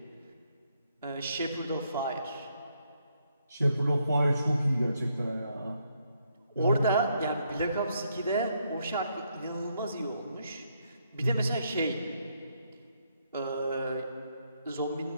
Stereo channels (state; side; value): inverted; both; correlation -0.75